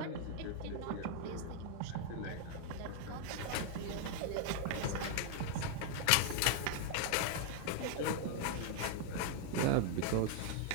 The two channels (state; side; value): different; both; correlation 0.00